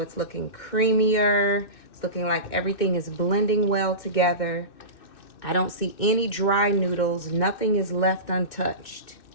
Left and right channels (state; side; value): late; right; 2.1 ms